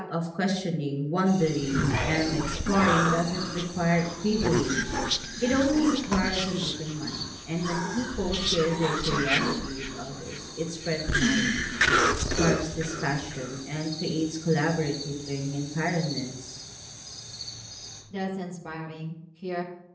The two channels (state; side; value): identical; both; correlation 1.00